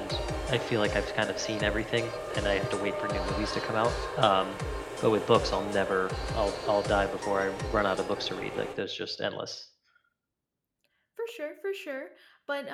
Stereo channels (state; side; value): identical; both; correlation 1.00